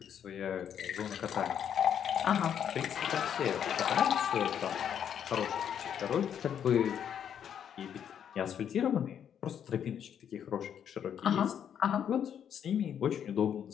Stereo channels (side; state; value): right; quieter; 8.8 dB